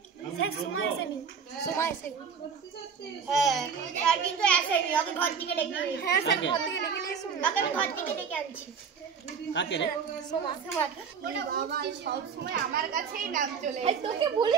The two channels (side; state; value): left; quieter; 6.4 dB